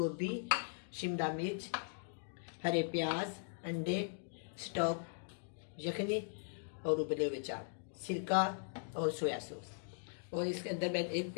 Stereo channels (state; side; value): silent; right; digital silence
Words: शिमला मिर्च, हरे प्याज, अंडे, स्टॉक, यखनी और उबले हुए चावल, सिरका और सोया सॉस। और इसके अंदर मैं एक